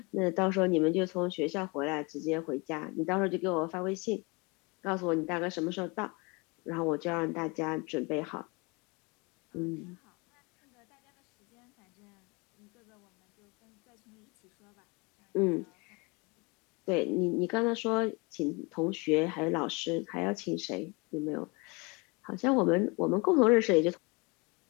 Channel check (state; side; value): quieter; right; 28.5 dB